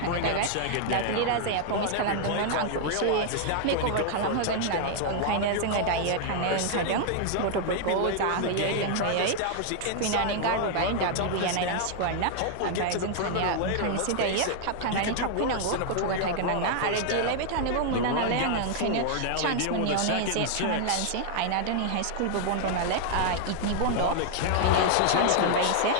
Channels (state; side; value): different; both; correlation 0.00